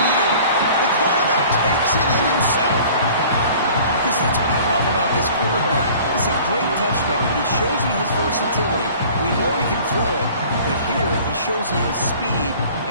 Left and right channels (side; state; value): both; inverted; correlation -0.48